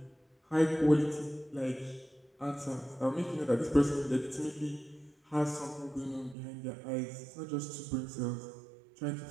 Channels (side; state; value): left; drops out; at 6.4 s